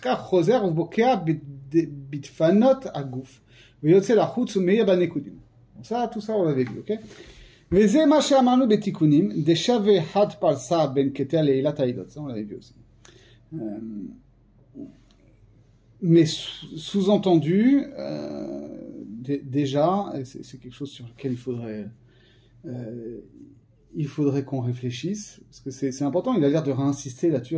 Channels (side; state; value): both; identical; correlation 1.00